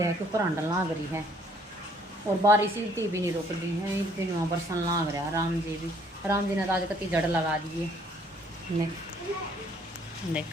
कि ऊपर अंडल लाग रही है, और बारिश इतनी भी नहीं रुक रही है, इतनी वहाँ बरसन लाग रहा है। राम जी ने तो आज कति जड़ लगा दिए। देख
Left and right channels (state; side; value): normal; both; correlation 0.62